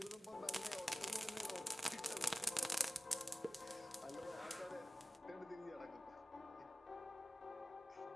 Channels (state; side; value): normal; both; correlation 0.97